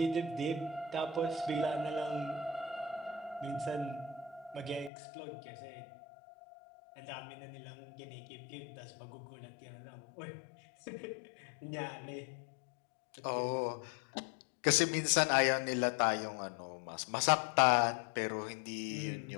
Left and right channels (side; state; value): right; drops out; at 4.9 s